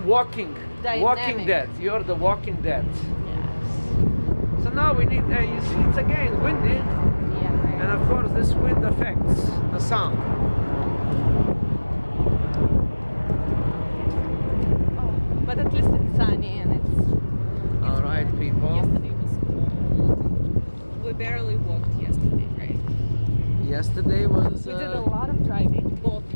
Walking Dynamic. Dead. You're the Walking Dead. Yes. So now we need. You see, it's again windy, Yeah. and of course this wind affects the sound. Oh, but at least it's sunny and it's. All right, people. Yesterday was cold. We barely walked yesterday, right? Yesterday was. We did a lot of driving, both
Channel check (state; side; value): inverted; both; correlation -1.00